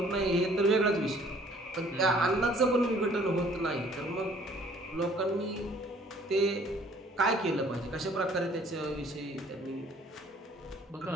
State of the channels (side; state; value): both; normal; correlation 0.57